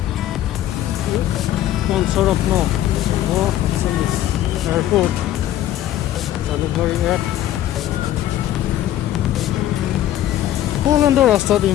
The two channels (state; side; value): quieter; right; 12.7 dB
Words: পঞ্চৰত্ন এয়াৰপোৰ্ট, জালুকবাৰী 1। পোলেণ্ডৰ ৰাস্তাত